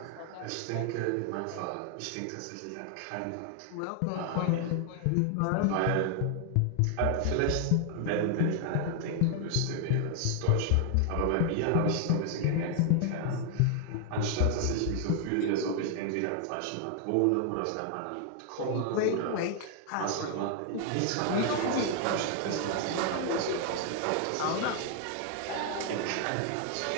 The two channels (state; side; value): different; both; correlation 0.00